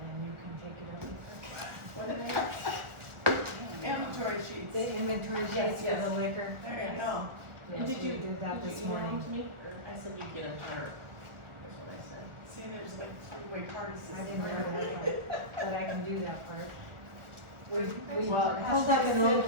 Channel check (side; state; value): left; late; 1.4 ms